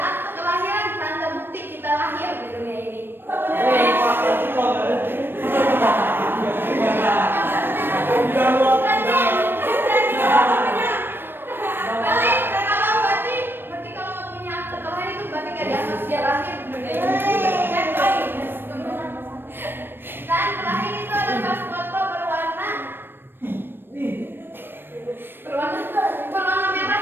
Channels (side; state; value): left; late; 0.098 ms